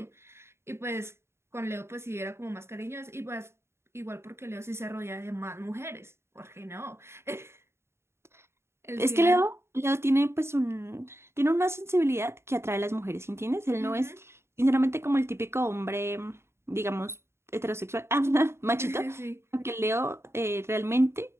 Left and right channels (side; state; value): left; late; 0.12 ms